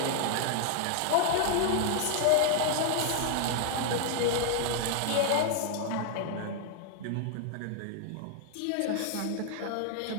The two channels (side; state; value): both; different; correlation -0.01